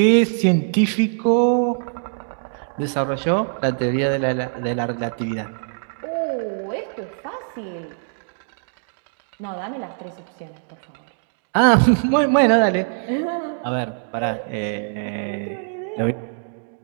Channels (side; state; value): left; silent; digital silence